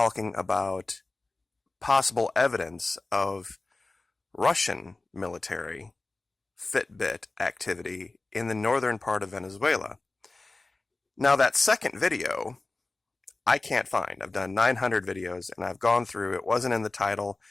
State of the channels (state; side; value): quieter; right; 3.2 dB